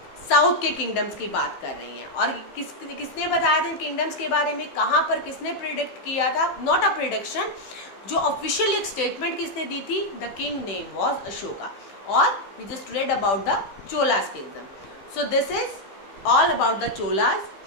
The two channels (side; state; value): right; late; 15 ms